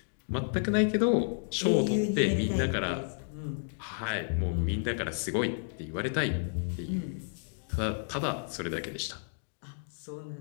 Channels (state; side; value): silent; right; digital silence